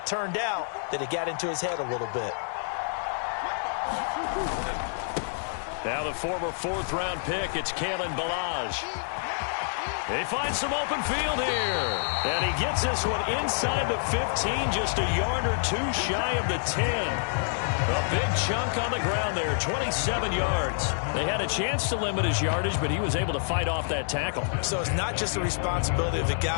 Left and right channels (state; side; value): silent; right; 60 dB below the other